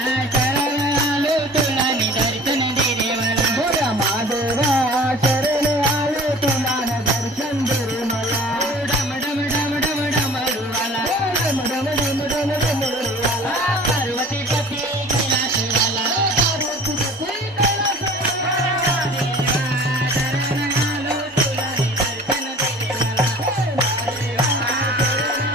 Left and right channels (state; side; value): normal; both; correlation 0.44